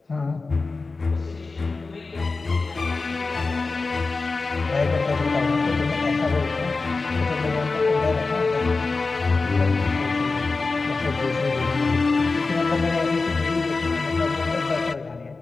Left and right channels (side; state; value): right; quieter; 3.9 dB